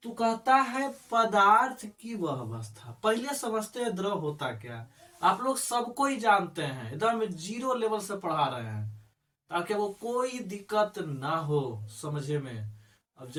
तू कहता है पदार्थ की वह अवस्था। पहले समझते हैं द्रव होता क्या। आप लोग सबको ही जानते हैं, एकदम जीरो लेवल से पढ़ा रहे हैं ताकि वो कोई दिक्कत ना हो समझे में। अब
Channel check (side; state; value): both; identical; correlation 1.00